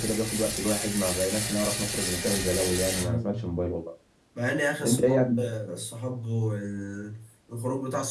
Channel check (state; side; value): identical; both; correlation 1.00